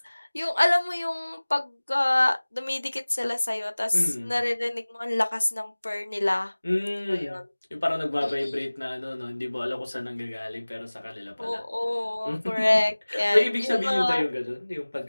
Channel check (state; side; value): inverted; both; correlation -1.00